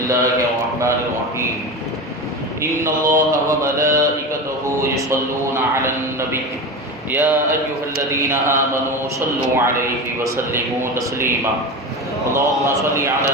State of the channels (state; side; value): normal; both; correlation 0.25